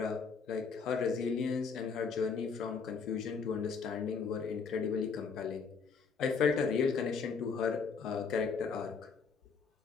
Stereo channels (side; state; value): right; quieter; 5.5 dB